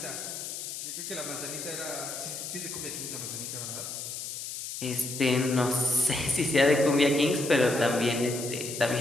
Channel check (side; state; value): left; noise; hiss, 7 dB below the sound